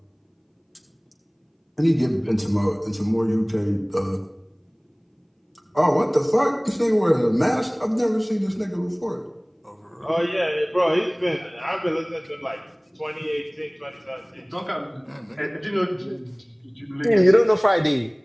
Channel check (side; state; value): both; identical; correlation 1.00